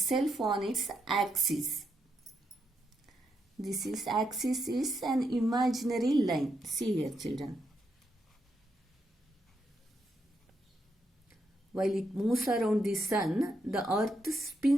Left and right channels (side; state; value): both; normal; correlation 0.81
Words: on its axis. This is axis is an imaginary line. See here children. While it moves around the sun, the earth